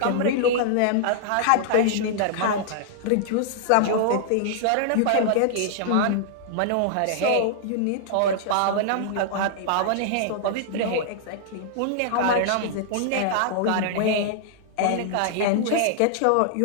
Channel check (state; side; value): different; both; correlation -0.01